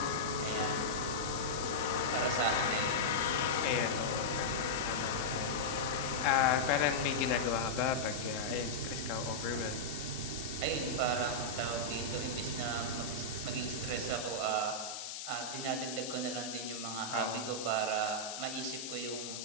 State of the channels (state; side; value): noise; left; hiss, 7 dB below the sound